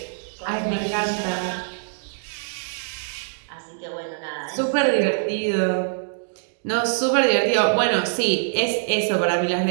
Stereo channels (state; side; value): silent; left; digital silence